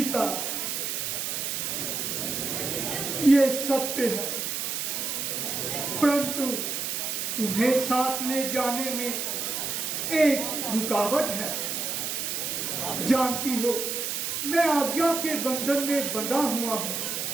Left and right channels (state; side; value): noise; right; hiss, 2 dB below the sound